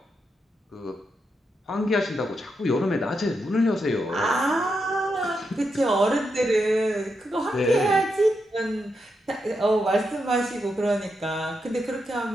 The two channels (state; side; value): normal; both; correlation 0.84